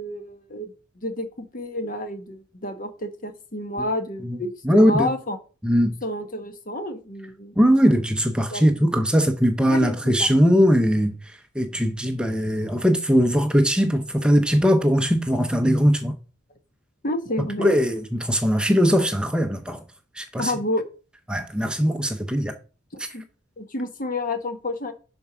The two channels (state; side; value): normal; both; correlation 0.82